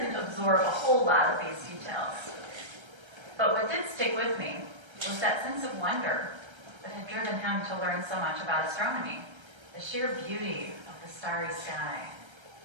absorb a whole lot of these details. But what did stick with me was that sense of wonder that had driven him to learn so much about astronomy, the sheer beauty of the starry sky,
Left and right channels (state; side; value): late; left; 1.3 ms